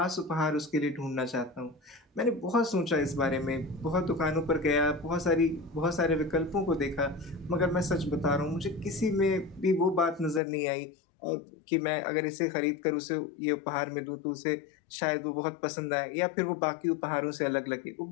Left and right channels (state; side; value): drops out; right; at 10.4 s